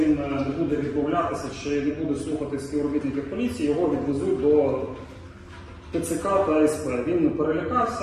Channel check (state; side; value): identical; both; correlation 1.00